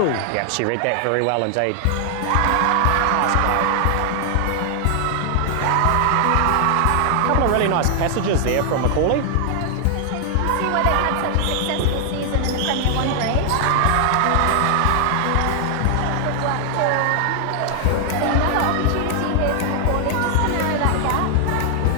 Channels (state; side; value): different; both; correlation 0.00